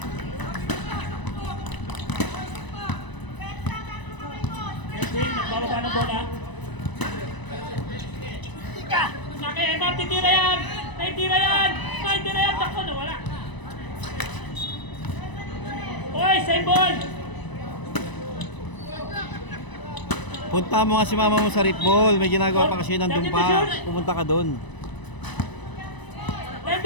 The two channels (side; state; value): right; late; 1.0 ms